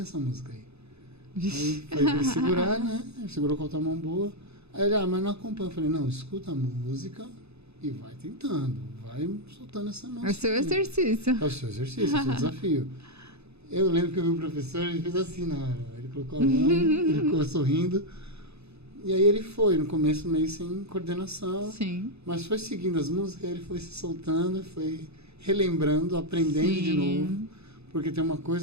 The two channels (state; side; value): late; left; 0.80 ms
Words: essa música aí. Aí foi pra ele segurar, né? Ele segurou com a outra mão boa. Aí ele, mas não acompanha. Eu falei, não, escuta a música e vai tentando, vai soltando essa mão. É o seu exercício. É o seu exercício, é o seu desafio. Eu lembro que eu vi o professor, ele fez assim na hora. Ele colocou a mão, ele ficou sorrindo. E aí ele foi, no começo meio sem coordenação. Sim. Mas foi seguindo as músicas, ele foi se soltando, foi relembrando, aprendendo de novo. Porque tem uma